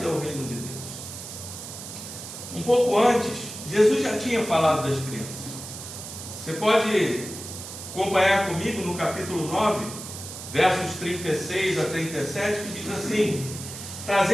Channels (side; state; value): right; noise; hiss, 10 dB below the sound